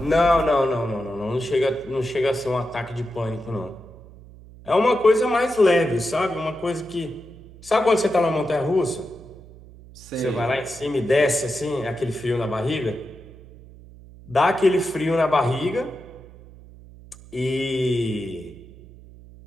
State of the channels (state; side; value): noise; right; hum, 20 dB below the sound